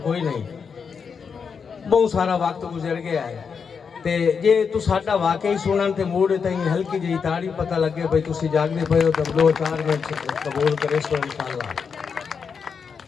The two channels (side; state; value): right; quieter; 6.0 dB